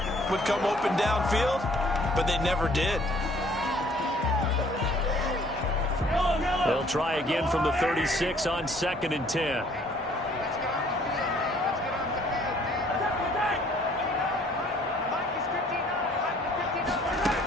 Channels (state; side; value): normal; both; correlation 0.59